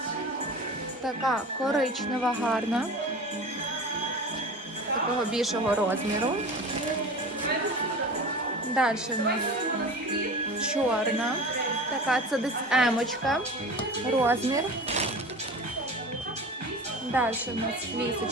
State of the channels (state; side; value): normal; both; correlation 0.34